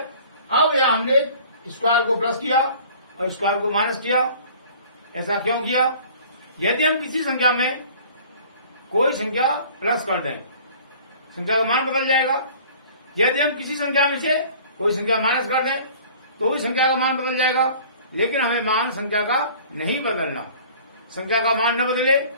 अब यह हमने स्क्वायर को प्लस किया और स्क्वायर को माइनस किया। ऐसा क्यों किया? यदि हम किसी संख्या में कोई संख्या प्लस कर दें, संख्या का मान बदल जाएगा। यदि हम किसी संख्या में से कोई संख्या माइनस कर दें तो भी संख्या का मान बदल जाएगा। लेकिन हमें मान संख्या का नहीं बदलना। संख्या का मान न बदले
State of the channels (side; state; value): both; inverted; correlation -0.48